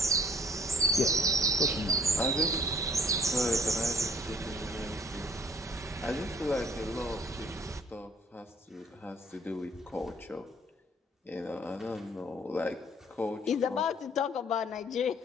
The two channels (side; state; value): both; normal; correlation 0.58